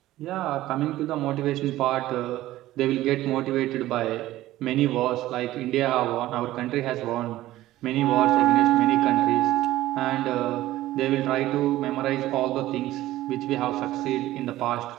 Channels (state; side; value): quieter; left; 15.5 dB